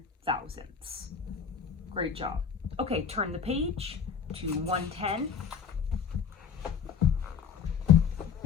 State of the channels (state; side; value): quieter; right; 6.7 dB